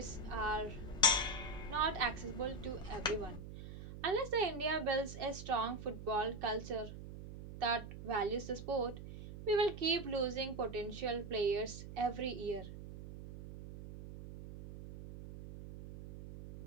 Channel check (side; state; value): right; noise; hum, 11 dB below the sound